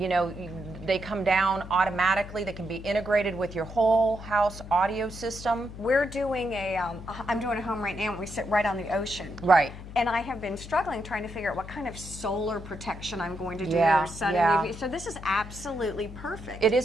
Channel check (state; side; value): noise; left; hum, 13 dB below the sound